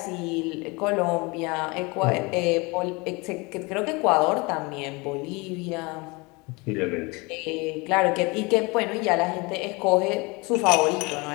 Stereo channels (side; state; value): right; quieter; 26.5 dB